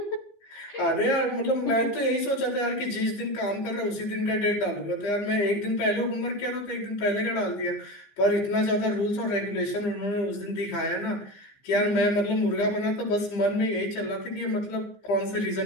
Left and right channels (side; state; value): right; late; 15 ms